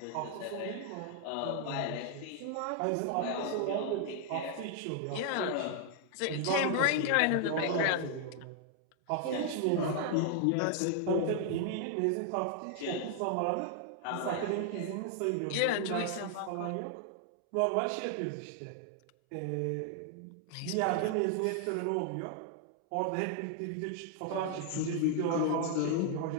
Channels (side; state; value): both; different; correlation 0.00